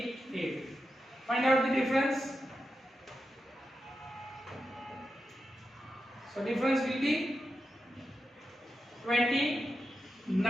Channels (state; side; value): normal; both; correlation 0.89